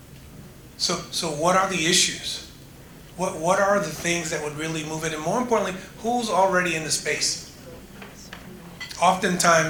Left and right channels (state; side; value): identical; both; correlation 1.00